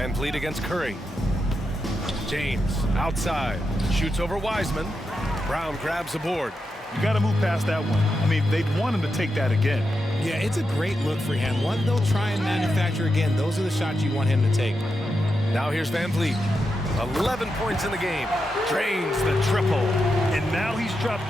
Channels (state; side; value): normal; both; correlation 0.86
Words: Vliet against Curry. James outside. Shoots over Wiseman. Brown grabs the board. You got to move past that one. I mean, they'd want him to take that again. Yeah, it's a great look for him. One they'll try and manufacture again. Those are the shots you want him to take. Now here's Van Vliet. 11 points in the game. Drains the triple. And now he's dropped